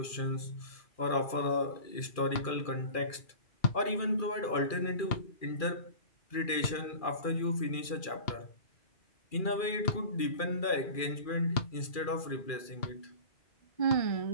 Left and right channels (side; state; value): right; late; 2.4 ms